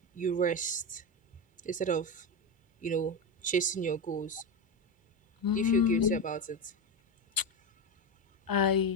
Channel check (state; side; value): normal; both; correlation 0.14